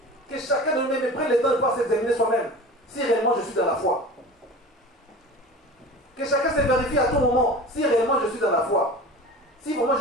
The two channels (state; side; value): normal; both; correlation 0.36